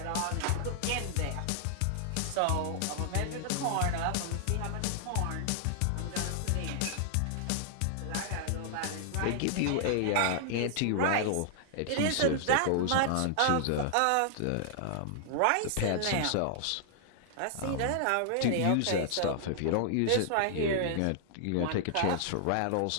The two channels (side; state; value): both; different; correlation -0.01